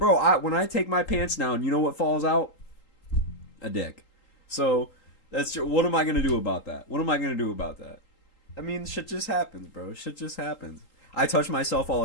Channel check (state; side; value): late; right; 3.8 ms